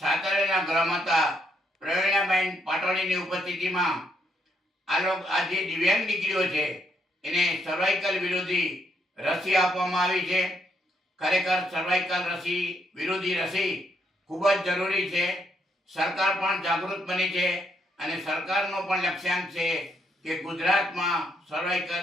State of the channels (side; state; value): both; normal; correlation 0.74